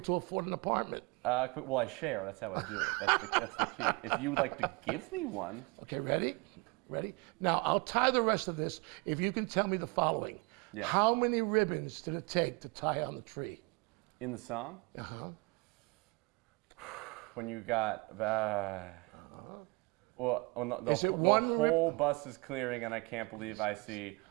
to afford an apartment? Well, I share. That's how I do it. That's the key. If you would like to give me one. Okay, ready? Ready? Now, I'll tie the rest of this if you can tell me the following. Yes. How many ribbons did it take to tie on the tree? In the song? Uh-huh. When you got, well, the one whole bus is clearing, and I can't believe I see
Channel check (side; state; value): left; quieter; 28.0 dB